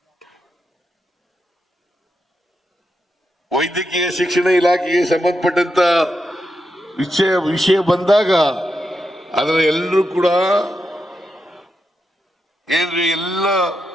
ವೈದ್ಯಕೀಯ ಶಿಕ್ಷಣ ಇಲಾಖೆಗೆ ಸಂಬಂಧಪಟ್ಟಂತ ವಿಷಯ ಬಂದಾಗ ಅದರ ಎಲ್ಲರೂ ಕೂಡ ಏನ್ರಿ ಎಲ್ಲ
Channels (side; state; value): both; normal; correlation 0.86